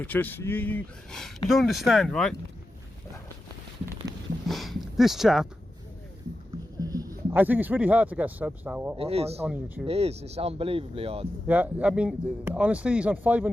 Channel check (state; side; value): normal; both; correlation 0.91